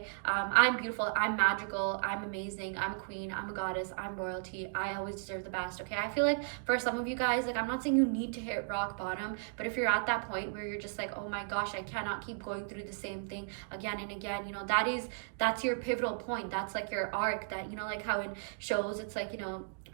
I'm beautiful, I'm magical, I'm amazing, I'm a queen, I'm a goddess, I'm royalty, I always deserve the best. Okay, I feel for some of you guys, I'm not saying you need to hit rock bottom, but if you're at that point where you're just oh my gosh, I cannot keep going through the same thing again and again, that's your pivotal point. That's your arc, that how in shows it's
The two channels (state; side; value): silent; left; digital silence